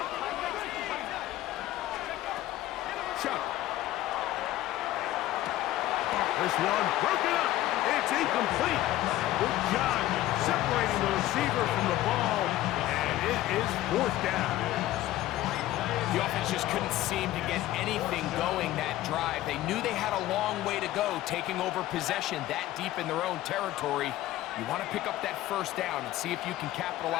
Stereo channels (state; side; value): quieter; right; 15.1 dB